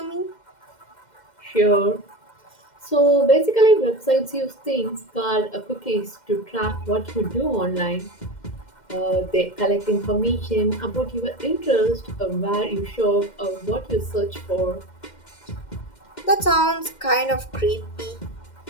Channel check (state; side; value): late; right; 2.1 ms